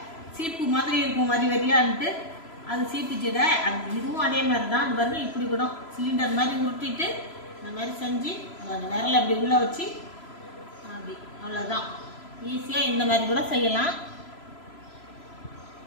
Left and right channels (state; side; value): late; right; 3.0 ms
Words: சீப்பு மாதிரி இருக்கும் வரி வரியான்ட்டு, அது சீப்பு சீடை. இதுவும் அதே மாதிரி தான். அது பாருங்கள், இப்படி கூட சிலிண்டர் மாதிரி உருட்டிட்டு இந்த மாதிரி செஞ்சு விரல அப்படி உள்ளே வச்சு அப்படி, அவ்வளோதான். ஈஸியாக இந்த மாதிரி கூட செய்யலாம்.